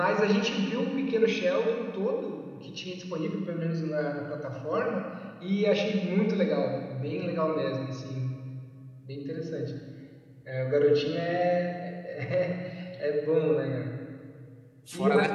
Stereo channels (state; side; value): identical; both; correlation 1.00